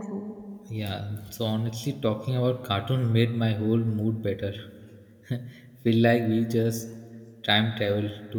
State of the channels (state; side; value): identical; both; correlation 1.00